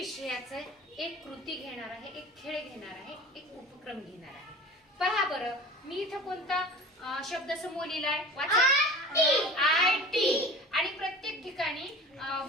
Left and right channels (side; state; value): both; normal; correlation 0.38